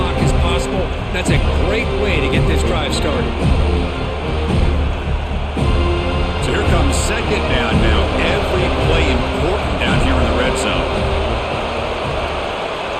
as possible. That's a great way to get this drive started. So here comes 2nd down now. Every play important down here in the red zone.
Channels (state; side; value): identical; both; correlation 1.00